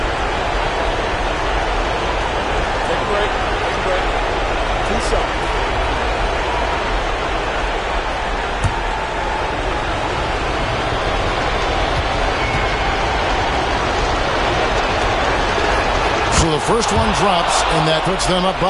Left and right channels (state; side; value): identical; both; correlation 1.00